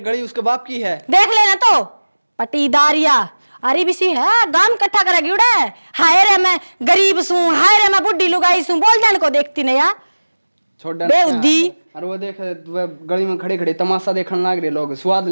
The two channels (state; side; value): inverted; both; correlation -1.00